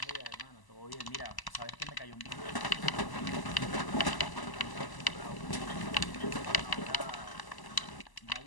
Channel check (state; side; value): late; right; 1.0 ms